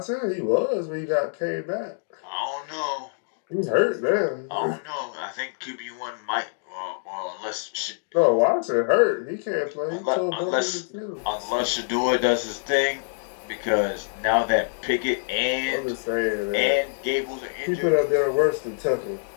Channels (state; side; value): silent; right; digital silence